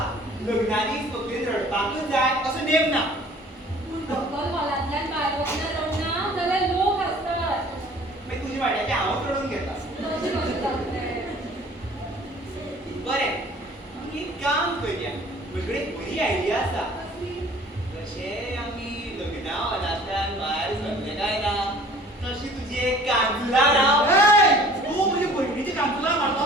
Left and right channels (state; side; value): normal; both; correlation 0.50